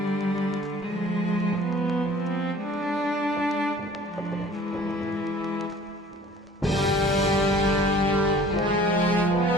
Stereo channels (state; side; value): normal; both; correlation 0.50